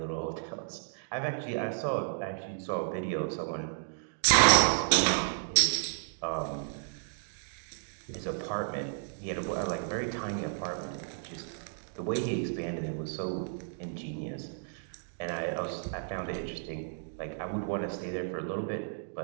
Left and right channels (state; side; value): silent; left; digital silence